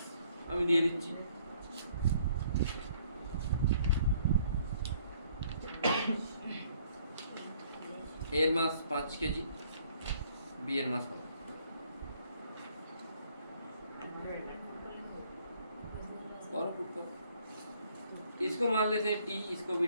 আমি দিয়ে দিচ্ছি, এর মাস 5 কেজি, बी এর মাস কত? और पुट करो, इसको मान लेते हैं टी, इसको भी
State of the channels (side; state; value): both; inverted; correlation -0.63